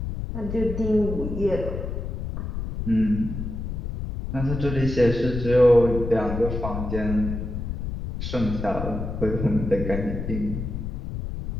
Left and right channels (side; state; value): left; noise; rumble, 5 dB below the sound